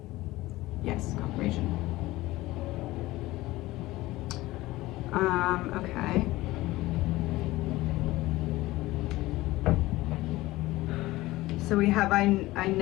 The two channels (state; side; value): quieter; right; 18.4 dB